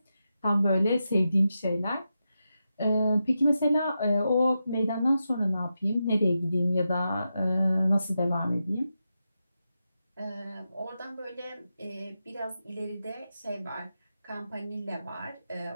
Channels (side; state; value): both; inverted; correlation -0.88